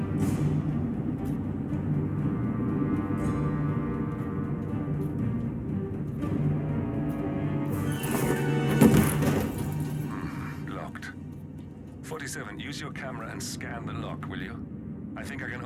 Locked. 47, use your camera and scan the lock, will you? I think I can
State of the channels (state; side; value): identical; both; correlation 1.00